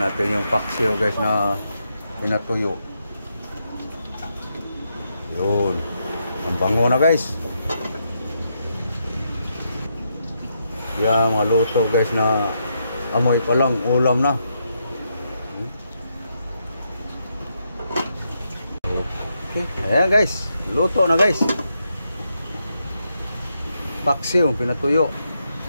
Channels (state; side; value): inverted; both; correlation -0.81